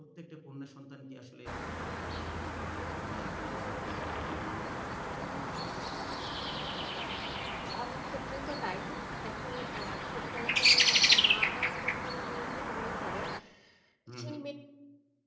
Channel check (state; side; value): identical; both; correlation 1.00